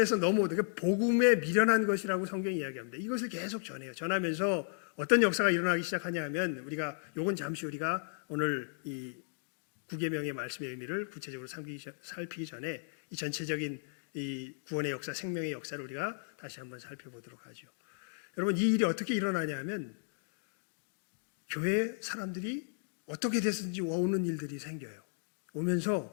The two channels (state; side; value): silent; right; digital silence